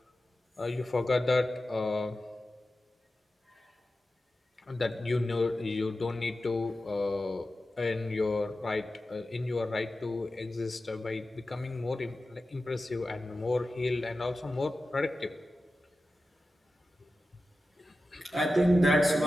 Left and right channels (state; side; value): normal; both; correlation 0.93